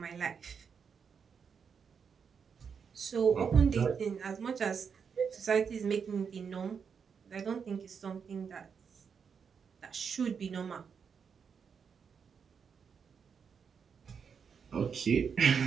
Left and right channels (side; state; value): left; quieter; 6.5 dB